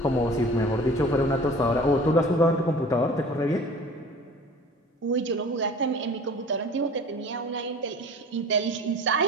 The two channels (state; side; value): normal; both; correlation 0.43